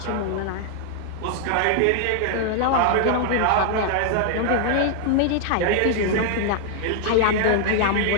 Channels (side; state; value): both; different; correlation -0.01